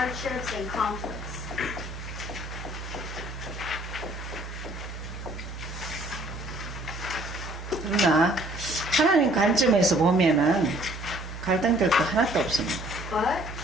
and conflicts. 그러나 하나님 관점에서 보면은 갈등될 거 하나도 없습니다. But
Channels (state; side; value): normal; both; correlation 0.58